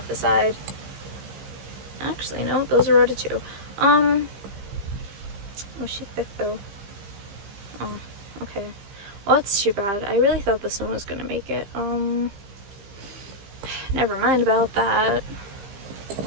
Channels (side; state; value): left; late; 15 ms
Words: the side. Actually, no, those are rotted too. Oh, she's thick though. Oh, okay. Well, that's too bad. I really thought this one was gonna make it. Never mind about that.